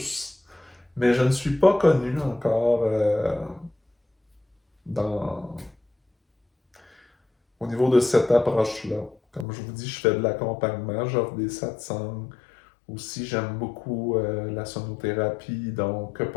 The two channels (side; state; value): right; drops out; at 9.5 s